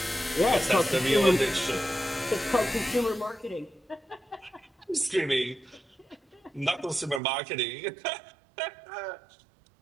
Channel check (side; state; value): left; drops out; at 7.2 s